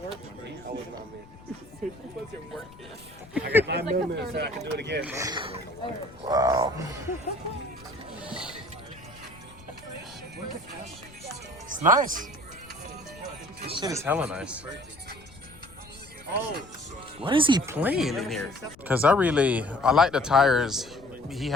I got 9 millimeters so I can do it again. Wow. It's nice. This shit is hella nice. What is he playing in here? Because I like the tires he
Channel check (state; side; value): noise; left; rumble, 22 dB below the sound